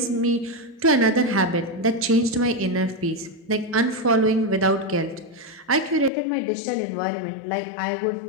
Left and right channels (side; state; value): right; drops out; at 6.1 s